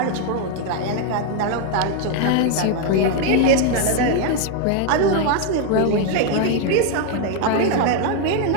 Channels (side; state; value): both; different; correlation 0.01